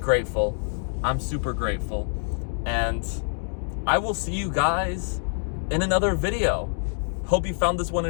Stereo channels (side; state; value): right; silent; digital silence